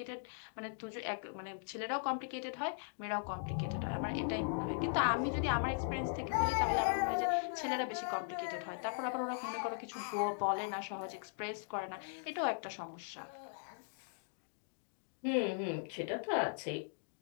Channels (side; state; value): right; silent; digital silence